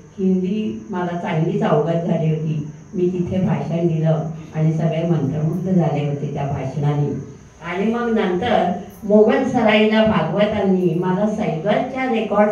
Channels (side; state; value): both; identical; correlation 1.00